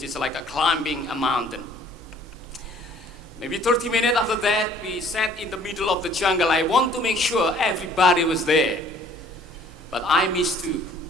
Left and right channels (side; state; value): both; normal; correlation 0.56